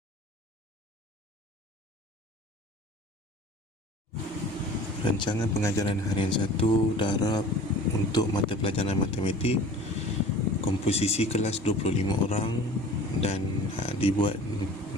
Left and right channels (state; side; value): normal; both; correlation 0.44